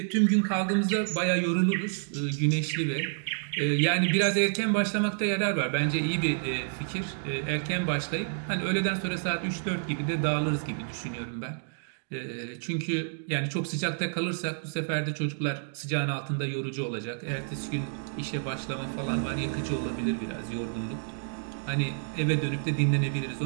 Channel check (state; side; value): silent; left; digital silence